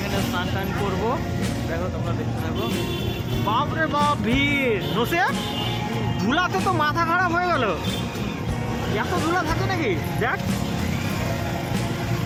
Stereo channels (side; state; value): both; identical; correlation 1.00